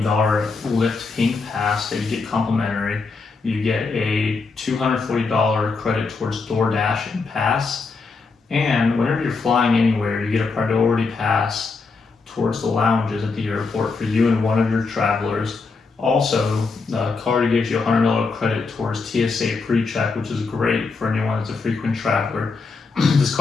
Lyft Pink pass that you get complimentary. You get a $240 credit towards Doordash and pass. And whenever you're flying anywhere, you get a priority pass towards the lounges at the airport for you and one of your travelers. Also, the card gives you a $100 credit towards TSA pre-check, which is great for anyone that's a frequent traveler. This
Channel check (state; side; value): quieter; right; 4.4 dB